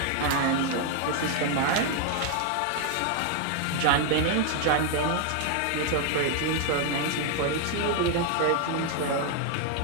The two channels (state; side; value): different; both; correlation 0.00